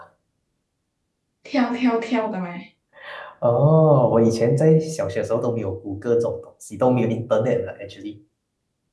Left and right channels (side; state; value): both; identical; correlation 1.00